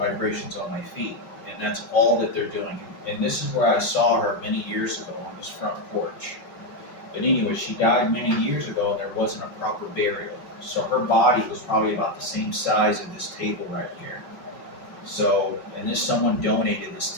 vibrations on my feet, and that's all that they're doing. And this is where I saw her many years ago on this front porch. But anyway, she died many years ago, and there wasn't a proper burial. So her body was probably about the same size of this table right here. So, and someone donated this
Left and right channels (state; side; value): late; right; 5.4 ms